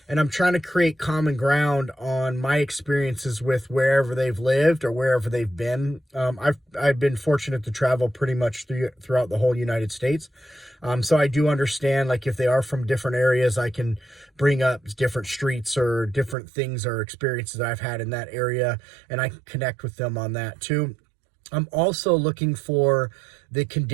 And I'm trying to create common ground on my experiences with wherever they've lived or wherever they've been. I've been fortunate to travel pretty much throughout the whole United States. So I do understand, like, if they are from different areas, I can bring up different streets or different things or experiences that I've had in that area, and I can connect with them on that too. I'm also looking for the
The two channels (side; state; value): left; drops out; at 16.4 s